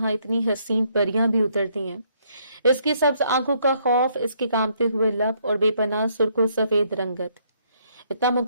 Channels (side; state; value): both; inverted; correlation -0.70